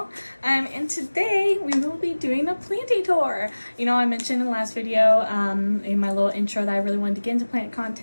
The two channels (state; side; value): inverted; both; correlation -1.00